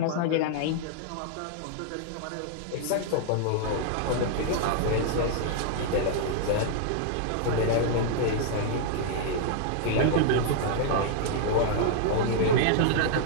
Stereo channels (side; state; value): both; different; correlation -0.01